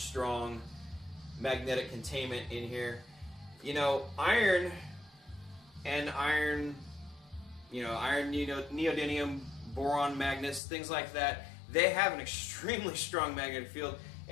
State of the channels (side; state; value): right; drops out; at 10.6 s